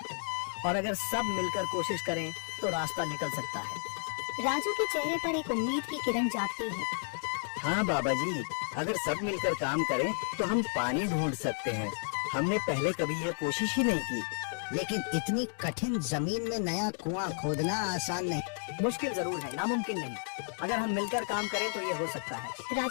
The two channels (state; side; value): silent; right; 56 dB below the other